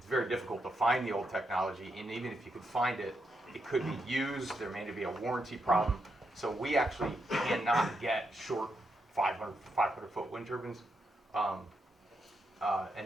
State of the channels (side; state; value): both; normal; correlation 0.82